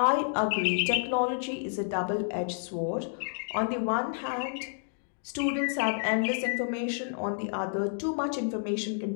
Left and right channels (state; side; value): silent; right; digital silence